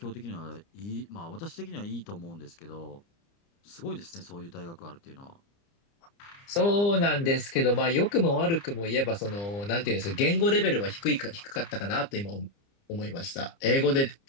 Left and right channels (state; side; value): late; right; 30 ms